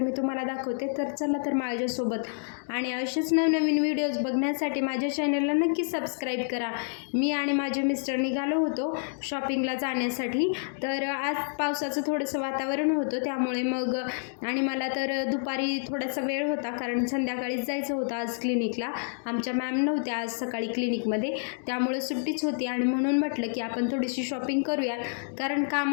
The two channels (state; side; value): silent; right; digital silence